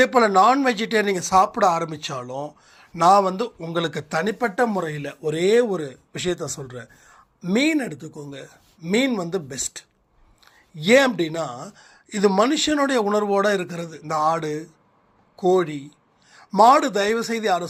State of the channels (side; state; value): both; identical; correlation 1.00